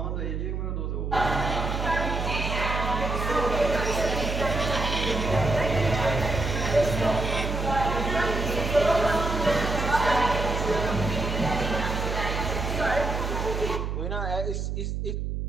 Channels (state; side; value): noise; right; hum, 2 dB below the sound